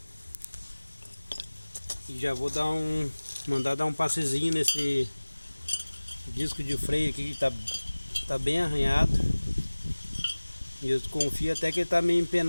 E já vou mandar dar um passezinho nesse disco de freio aqui que tá bem arranhado. E eu confio até que ele tá meio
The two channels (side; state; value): both; inverted; correlation -1.00